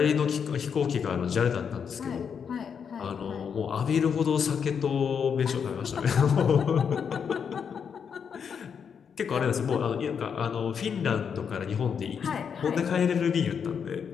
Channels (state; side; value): quieter; right; 7.0 dB